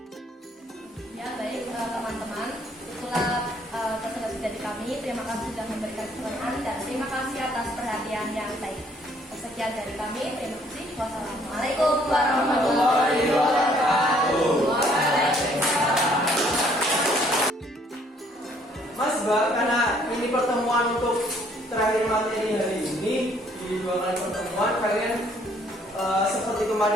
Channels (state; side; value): normal; both; correlation 0.63